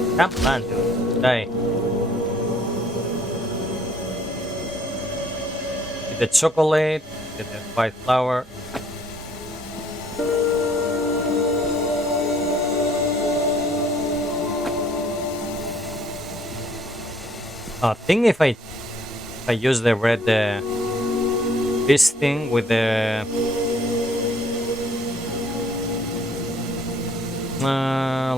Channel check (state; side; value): normal; both; correlation 0.61